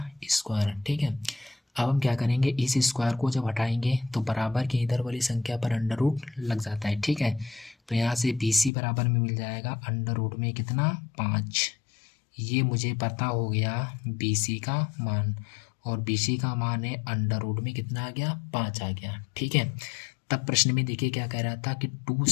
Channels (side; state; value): right; drops out; at 8.7 s